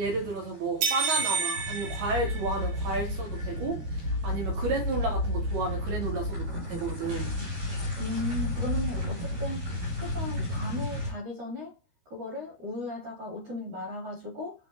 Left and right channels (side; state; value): left; late; 13 ms